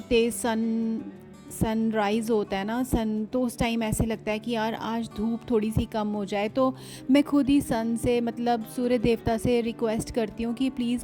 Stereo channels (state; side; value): identical; both; correlation 1.00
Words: तेज़ सनराइज़ होता है ना, तो उस टाइम ऐसे लगता है कि यार आज धूप थोड़ी सी कम हो जाए। तो मैं खुद ही सन से, मतलब सूर्य देवता से रिक्वेस्ट करती हूँ कि